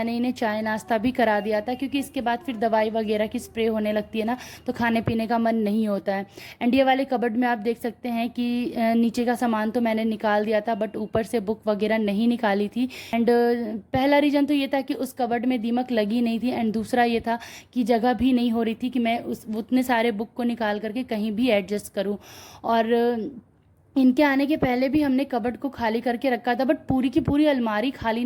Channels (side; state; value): both; identical; correlation 1.00